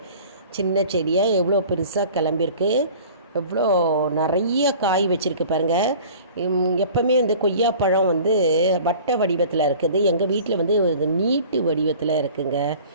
சின்ன செடியாக எவ்வளோ பெருசாக கிளம்பியிருக்கு, எவ்வளோ நிறைய காய் வச்சுருக்கு பாருங்கள். எப்போவுமே வந்து கொய்யாப்பழம் வந்து வட்ட வடிவத்தில் இருக்குது. எங்கள் வீட்டில் வந்து இது நீட்டு வடிவத்தில் இருக்குங்க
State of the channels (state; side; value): inverted; both; correlation -0.45